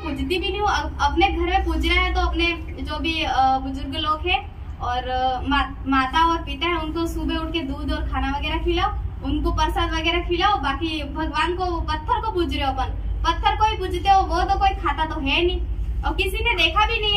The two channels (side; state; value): both; identical; correlation 1.00